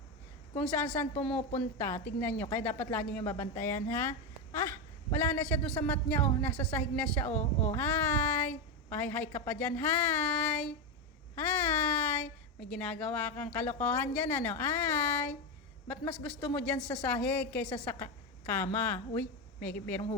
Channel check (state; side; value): normal; both; correlation 0.11